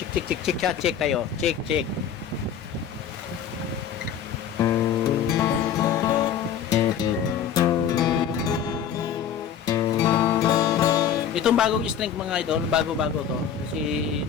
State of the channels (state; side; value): quieter; right; 8.6 dB